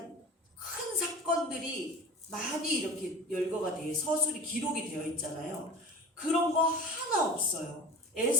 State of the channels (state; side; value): normal; both; correlation 0.34